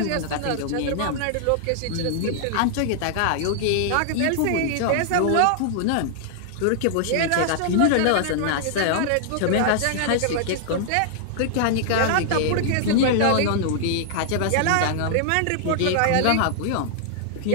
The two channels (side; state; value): both; different; correlation -0.01